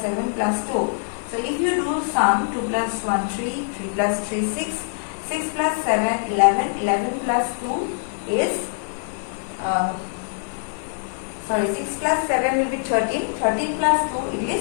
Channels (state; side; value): silent; right; 63 dB below the other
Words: 7 plus 2. So if you do sum, 2 plus 1 3, 3 plus 3 6, 6 plus 7 11, 11 plus 2 is 6 plus 7 will be 13, 13 plus 2 it